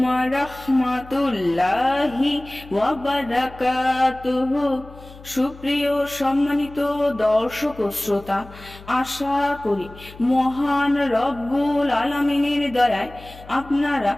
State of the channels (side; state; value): left; noise; hum, 19 dB below the sound